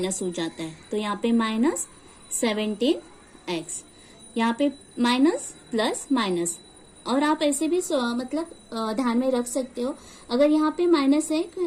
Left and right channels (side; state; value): both; identical; correlation 1.00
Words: हो जाता है। तो यहाँ पे माइनस 17x, यहाँ पे माइनस प्लस माइनस। और आप ऐसे भी मतलब ध्यान में रख सकते हो, अगर यहाँ पे माइनस है